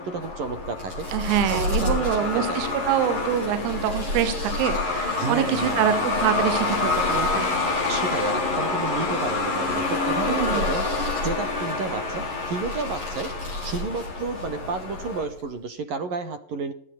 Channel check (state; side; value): late; left; 11 ms